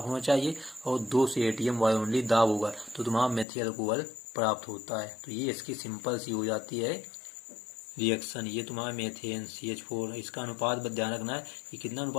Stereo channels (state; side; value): drops out; right; at 3.5 s